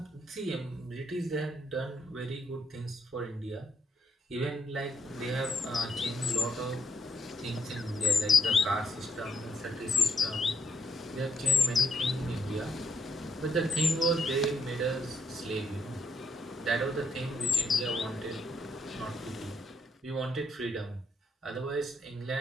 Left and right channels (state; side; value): normal; both; correlation 0.76